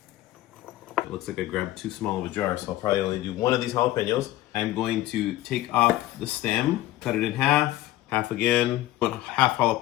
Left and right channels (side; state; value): right; quieter; 15.6 dB